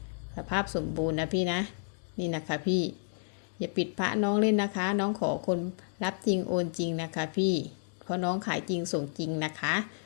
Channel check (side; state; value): right; silent; digital silence